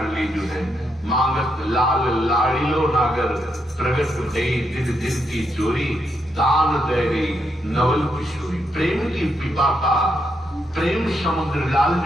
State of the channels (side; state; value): both; normal; correlation 0.80